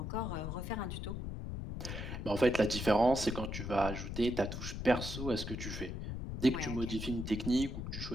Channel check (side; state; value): left; noise; rumble, 5 dB below the sound